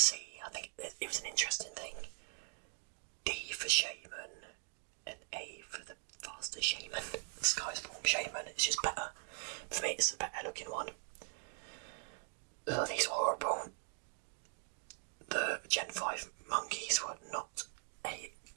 I think it was an interesting thing. D for Shaman and A for the faster Shaman. The Sky's Form Shaman, it's just better. For me, it's the better looking one. These were horrible. The Gen 5 monkeys were not a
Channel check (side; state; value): left; silent; 51 dB below the other